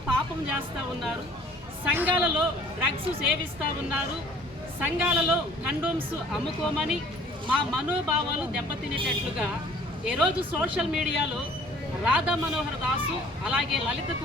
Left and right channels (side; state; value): both; normal; correlation 0.53